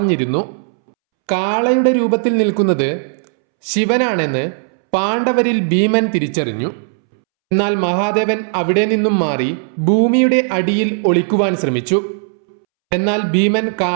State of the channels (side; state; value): left; silent; 69 dB below the other